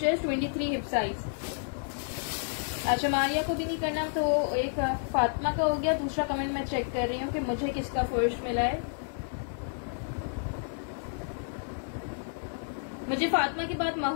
23 हिप साइज। अच्छा, मारिया को भी नहीं करना तो एक फातिमा का हो गया। दूसरा कमेंट मैं चेक कर रही हूँ कि मुझे किसका फर्स्ट मिला है। मुझे फातिमा के बाद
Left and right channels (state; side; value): silent; right; digital silence